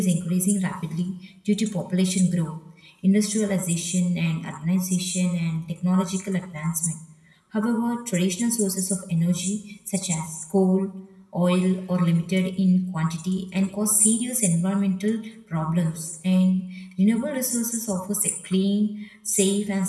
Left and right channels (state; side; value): identical; both; correlation 1.00